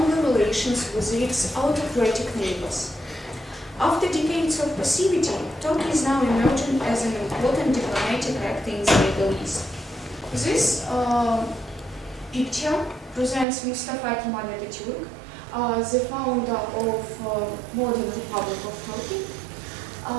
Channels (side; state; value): left; drops out; at 13.5 s